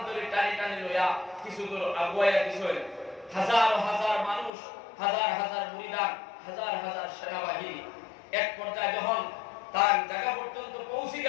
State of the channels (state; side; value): drops out; right; at 4.5 s